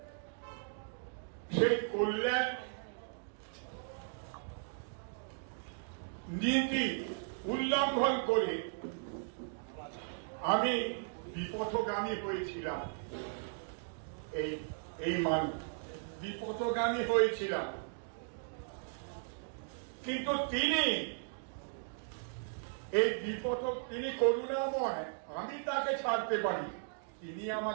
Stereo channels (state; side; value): silent; left; digital silence